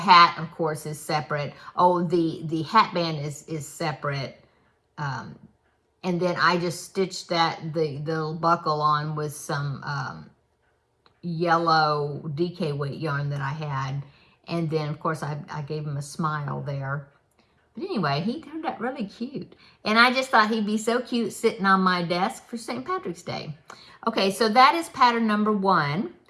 of course, is separate. Oh, the hat band is separate. And then I just stitched the little buckle on with some yellow DK weight yarn that I had. And then, of course, I gave him a smile there. But anyway, he turned out really cute. And I just thought he'd be so cute sitting on my desk for St. Patrick's Day. Okay, so that is pattern number 1.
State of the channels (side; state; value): both; identical; correlation 1.00